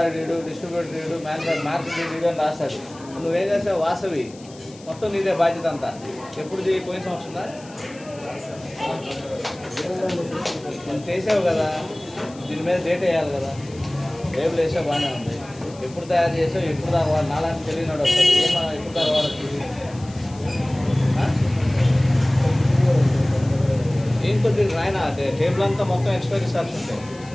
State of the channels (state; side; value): noise; left; hiss, 22 dB below the sound